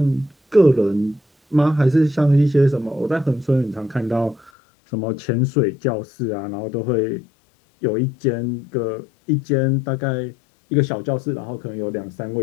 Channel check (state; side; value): drops out; right; at 4.5 s